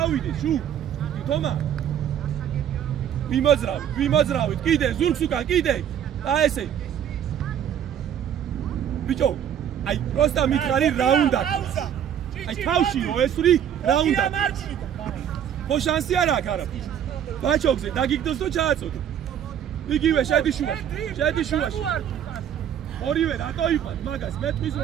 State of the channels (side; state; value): left; quieter; 9.5 dB